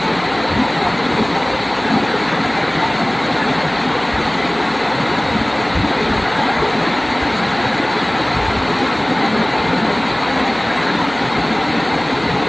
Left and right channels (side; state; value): right; noise; hum, 21 dB below the sound